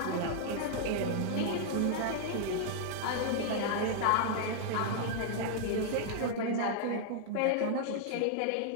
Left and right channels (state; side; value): different; both; correlation -0.01